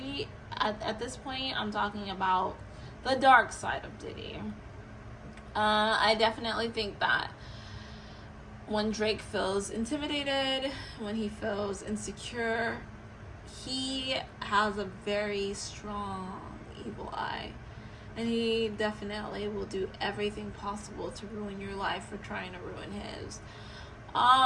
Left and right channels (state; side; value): identical; both; correlation 1.00